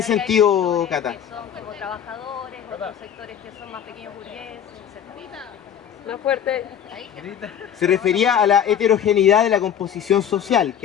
sentido, Cata? Que son como trabajadores, otros sectores que son más pequeños burgueses, etc. Más fuerte. Se refería a la heterogeneidad de la composición social,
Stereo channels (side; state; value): right; quieter; 9.0 dB